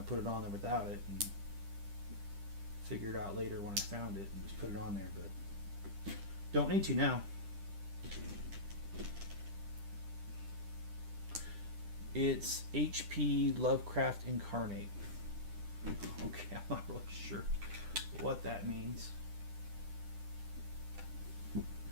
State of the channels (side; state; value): left; late; 10 ms